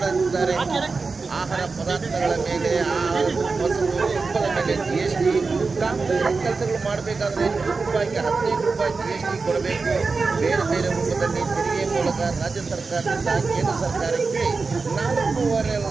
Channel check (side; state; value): left; quieter; 4.3 dB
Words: ಆಹಾರ ಪದಾರ್ಥಗಳ ಮೇಲೆ, ಮೊಸರು, ತುಪ್ಪದ ಮೇಲೆ ಜಿಎಸ್ಟಿ, ಕಾಂಗ್ರೆಸ್ ಕೆಲಸಗಳು ಮಾಡಬೇಕಾದ್ರೆ ರೂಪಾಯಿಗೆ 15 ರೂಪಾಯಿ ಜಿಎಸ್ಟಿ ಕೊಡಬೇಕು. ಬೇರೆ ಬೇರೆ ರೂಪದಲ್ಲಿ ತೆರಿಗೆ ಮೂಲಕ ರಾಜ್ಯ ಸರ್ಕಾರದಿಂದ ಕೇಂದ್ರ ಸರ್ಕಾರಕ್ಕೆ